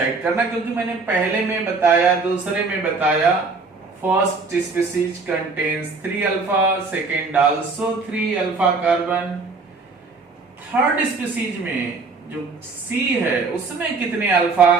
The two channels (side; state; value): left; quieter; 4.1 dB